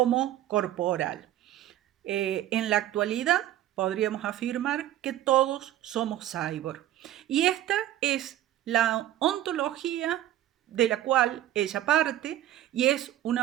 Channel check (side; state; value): left; quieter; 12.9 dB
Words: corporal. En la actualidad podríamos afirmar que todos somos cyborg. Y esta es la ontología de la cual ella parte, y es